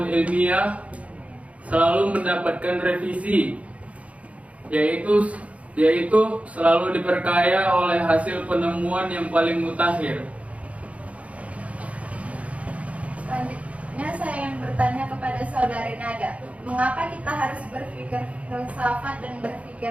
ilmiah selalu mendapatkan revisi, yaitu selalu diperkaya oleh hasil penemuan yang paling mutakhir. Selanjutnya saya ingin bertanya kepada saudari Nada, mengapa kita harus berpikir filsafat dan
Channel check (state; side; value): late; left; 0.065 ms